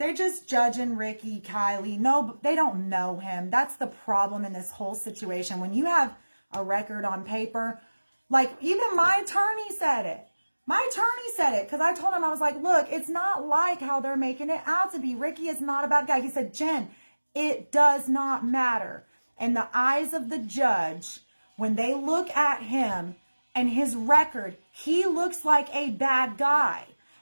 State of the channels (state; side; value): inverted; both; correlation -1.00